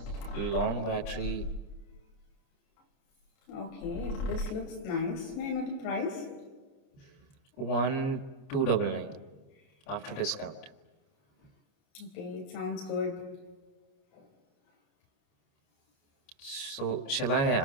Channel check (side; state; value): right; late; 29 ms